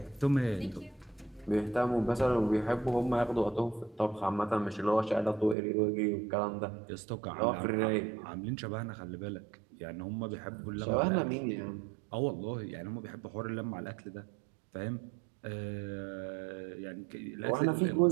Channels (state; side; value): drops out; left; at 5.6 s